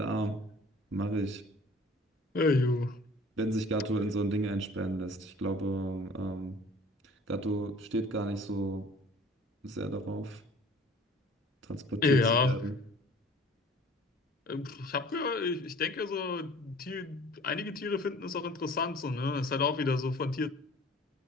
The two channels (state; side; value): normal; both; correlation 0.48